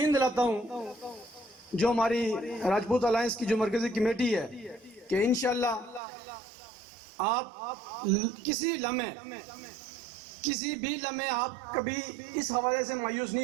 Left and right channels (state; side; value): drops out; left; at 6.0 s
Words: دلاتا ہوں جو ہماری راجپوت الائنس کی جو مرکزی کمیٹی ہے کہ انشاءاللہ آپ کسی بھی لمحے آپ کبھی اس حوالے سے مایوس